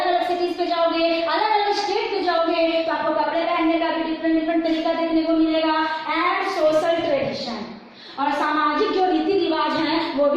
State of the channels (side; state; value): both; identical; correlation 1.00